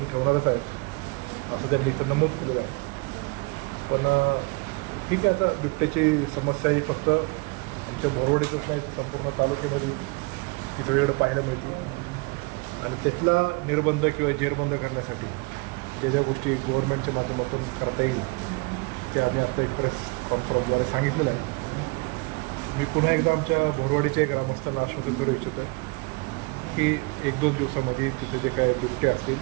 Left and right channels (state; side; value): quieter; left; 28.5 dB